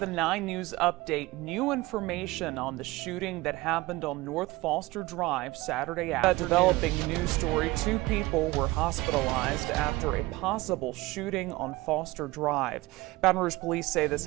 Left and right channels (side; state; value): left; quieter; 20.4 dB